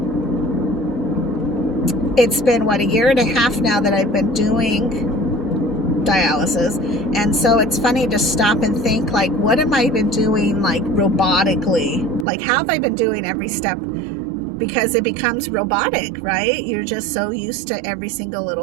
it's been, what, a year and a half now that I've been doing dialysis, and so it's funny to stop and think, like, what have I been doing, like, robotically? Like, how have I been doing every step? Because it becomes robotic, right? You're just so used to every single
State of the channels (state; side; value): drops out; left; at 12.2 s